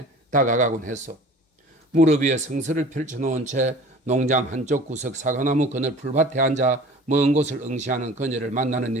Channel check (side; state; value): both; normal; correlation 0.44